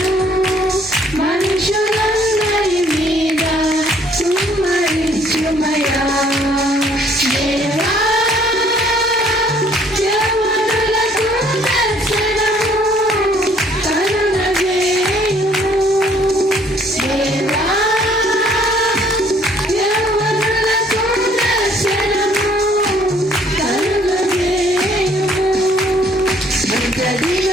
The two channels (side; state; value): both; normal; correlation 0.61